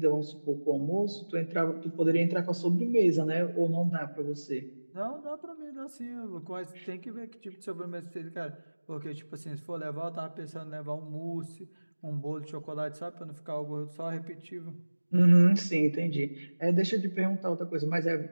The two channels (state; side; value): inverted; both; correlation -1.00